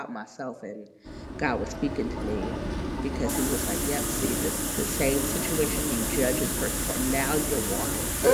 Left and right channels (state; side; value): identical; both; correlation 1.00